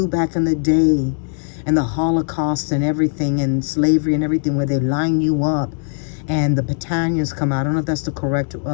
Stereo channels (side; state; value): right; silent; digital silence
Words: back in the day, and the Holocaust and everything, and slavery and everything, where they line you up and the battalions come out. I don't know if that's the correct